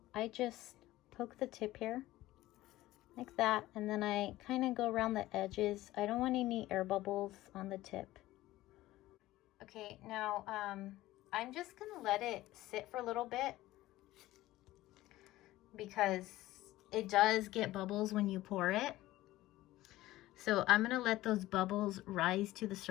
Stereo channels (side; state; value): right; quieter; 16.5 dB